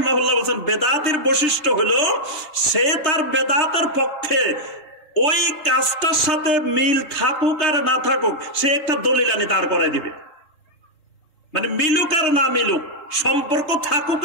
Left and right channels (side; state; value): right; late; 3.2 ms